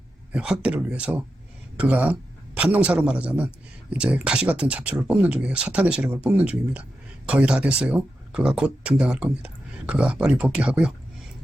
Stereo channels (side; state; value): both; normal; correlation 0.89